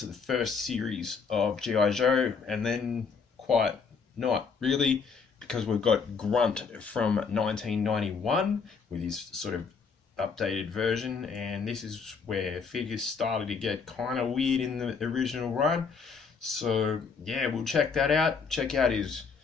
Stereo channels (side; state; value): right; quieter; 5.4 dB